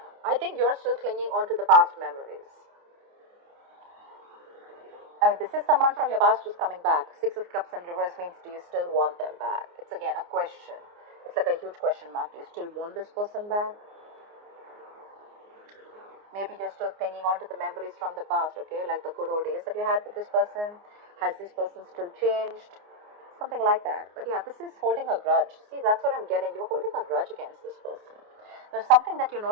I think you're still clinging on to the past memories. I mean, this is someone from your past who's coming back. Six of Cups in reverse means, do you still want them back? It's again a question. It's like a huge question mark. Do you still want this person back? Maybe you're still clinging on to the memories from the past, okay? Like the good old days that you had with this person. Has this person still changed? Something like that. But yeah, this is holding a grudge. See, that's what I'm getting. You're holding a grudge against this person. There's something that you're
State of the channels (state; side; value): late; left; 29 ms